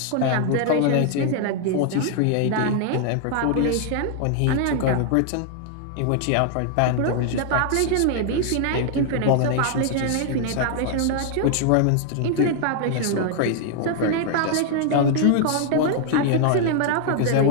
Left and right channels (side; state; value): both; different; correlation 0.00